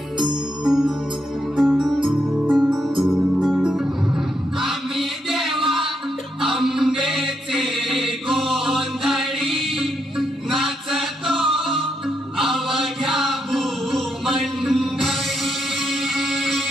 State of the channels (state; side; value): normal; both; correlation 0.80